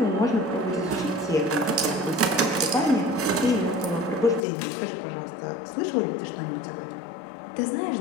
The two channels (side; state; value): right; drops out; at 4.5 s